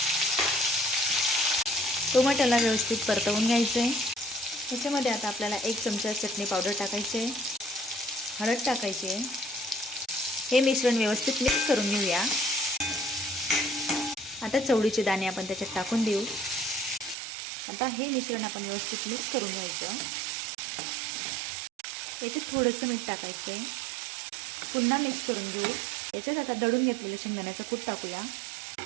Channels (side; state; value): left; drops out; at 17.2 s